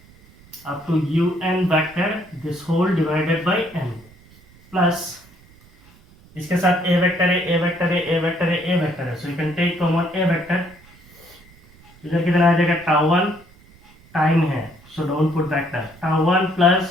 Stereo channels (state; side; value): noise; right; rumble, 26 dB below the sound